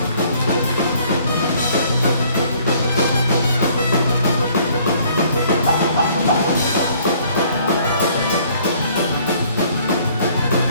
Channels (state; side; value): inverted; both; correlation -0.60